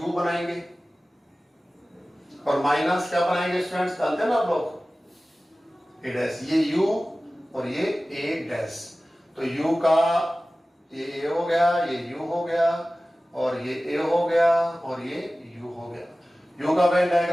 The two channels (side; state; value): both; normal; correlation 0.97